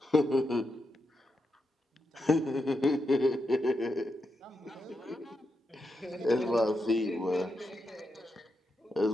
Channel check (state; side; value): normal; both; correlation 0.85